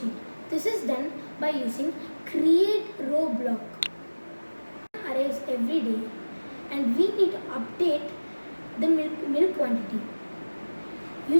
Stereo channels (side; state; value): both; inverted; correlation -1.00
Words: This is done by using create row block. Arrives every day and we need to update the milk quantity.